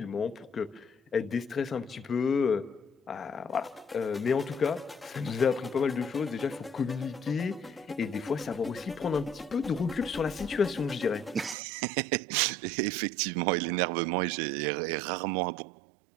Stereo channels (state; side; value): drops out; left; at 11.6 s